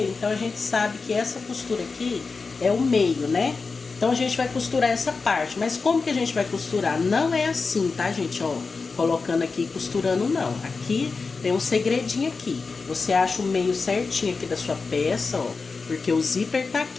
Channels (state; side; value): quieter; right; 4.4 dB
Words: então a gente sabe que essa costura aqui é o meio, né? Então, a gente vai costurar essa parte. Mas como que a gente vai costurar? Não é assim, tá, gente? Ó, colocando aqui e costurando, não. Aqui tem um segredinho aqui. Você acha o meio certinho aqui da sua peça, ó. Porque o zíper tá